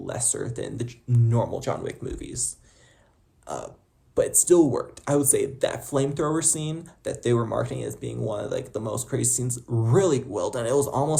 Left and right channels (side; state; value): both; identical; correlation 1.00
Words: than the normal John Wick movies. But it still worked. I would say that flamethrower scene that they were marketing as being one of the most crazy scenes, really well done. It was